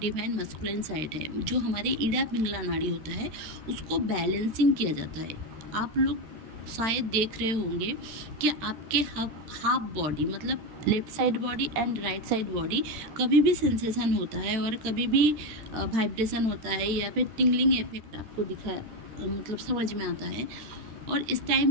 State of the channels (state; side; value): late; left; 13 ms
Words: मस्कुलिन साइड है, जो हमारे ईड़ा पिंगला नाड़ी होता है, उसको बैलेंसिंग किया जाता है। आप लोग शायद देख रहे होंगे कि आपके हाफ बॉडी, मतलब left side body and right side body, कभी भी सेंसेशन होता है और कभी भी वाइब्रेशन होता है, या फिर टिंगलिंग इफेक्ट आपको मतलब समझ में आता है। और इस